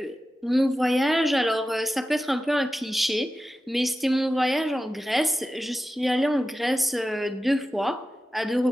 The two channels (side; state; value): both; normal; correlation 0.93